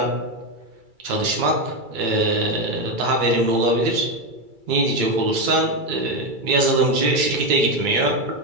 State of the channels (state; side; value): late; left; 2.3 ms